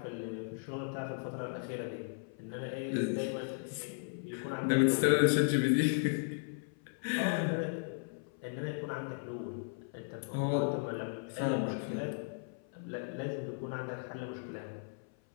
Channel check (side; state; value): right; silent; 54 dB below the other